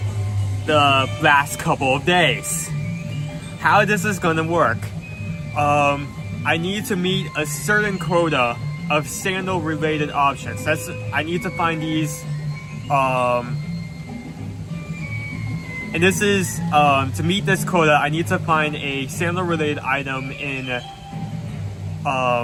the last couple of days. How this is gonna work? I need to meet a certain quota of sandal related options. I need to find these, and this is to meet this quota. I need to find a sandal related item in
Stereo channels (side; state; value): both; identical; correlation 1.00